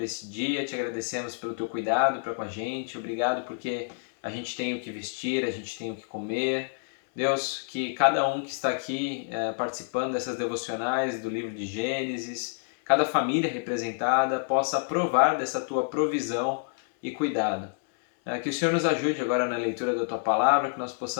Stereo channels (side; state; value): right; silent; 59 dB below the other